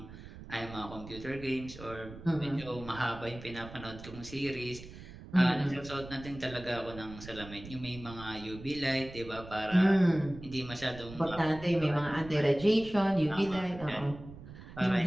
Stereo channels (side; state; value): right; noise; rumble, 15 dB below the sound